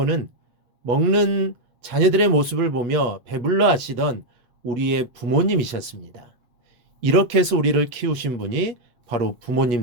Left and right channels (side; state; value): left; late; 8.3 ms